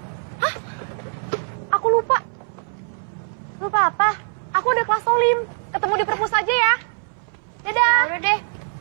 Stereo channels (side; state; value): left; silent; 64 dB below the other